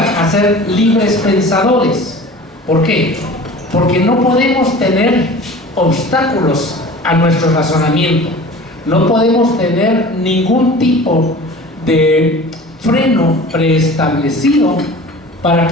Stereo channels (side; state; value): both; normal; correlation 0.40